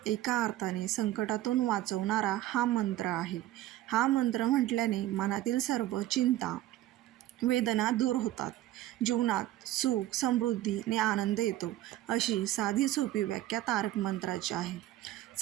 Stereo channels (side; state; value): left; quieter; 14.6 dB